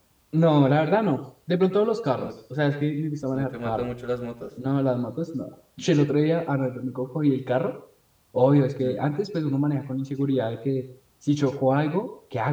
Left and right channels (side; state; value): both; identical; correlation 1.00